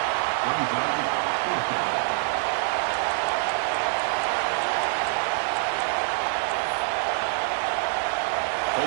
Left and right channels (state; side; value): silent; left; 61 dB below the other